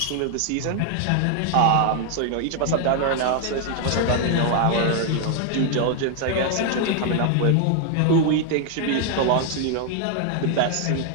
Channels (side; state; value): both; different; correlation 0.00